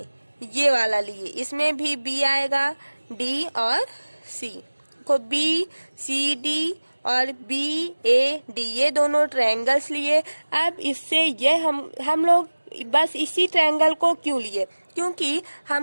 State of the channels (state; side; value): inverted; both; correlation -1.00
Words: ये वाला लिए, इसमें भी बी आएगा, डी और सी। को बी सी डी और बी ए डी ये दोनों ट्रायंगल्स लिए। अब इससे ये हम लोग बस इसी ट्रायंगल को क्यों लिए, क्योंकि